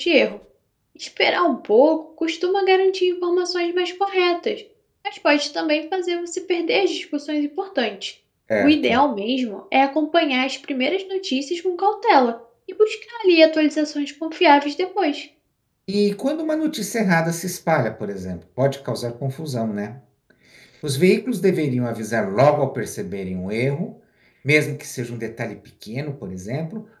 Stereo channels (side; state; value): both; identical; correlation 1.00